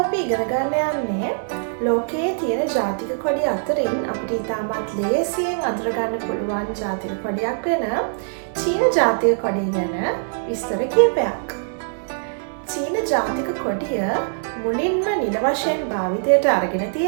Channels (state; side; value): silent; left; 60 dB below the other